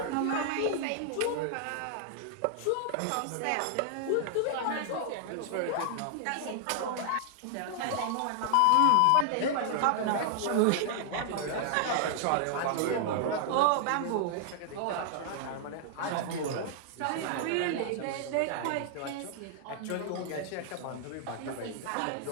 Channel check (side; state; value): both; different; correlation 0.00